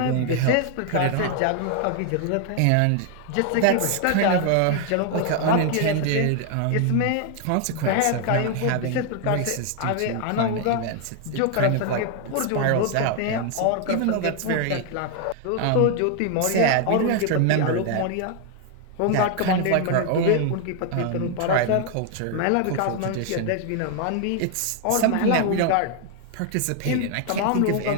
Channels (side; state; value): both; different; correlation 0.00